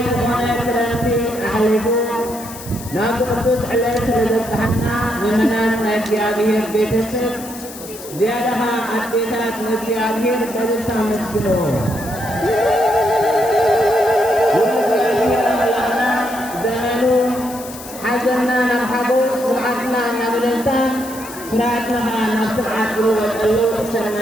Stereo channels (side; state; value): left; noise; hiss, 14 dB below the sound